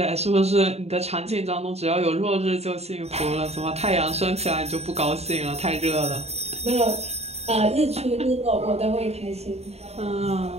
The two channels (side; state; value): left; late; 0.30 ms